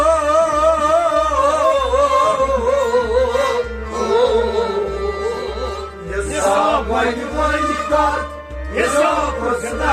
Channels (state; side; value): identical; both; correlation 1.00